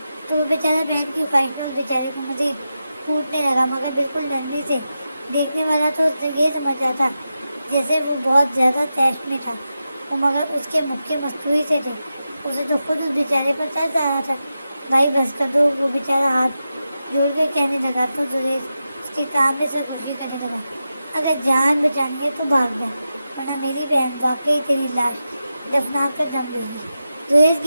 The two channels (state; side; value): inverted; both; correlation -0.90